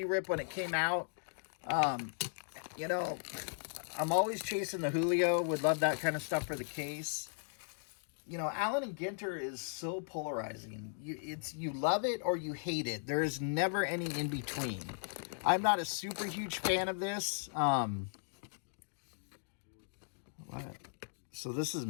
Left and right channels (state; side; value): silent; right; digital silence